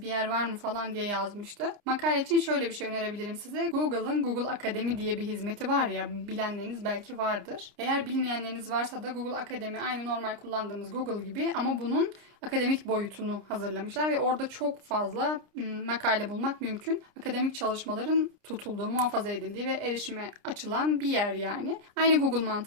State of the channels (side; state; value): left; late; 29 ms